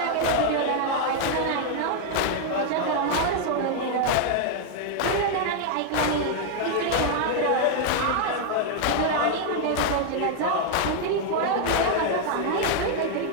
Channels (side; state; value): both; different; correlation 0.00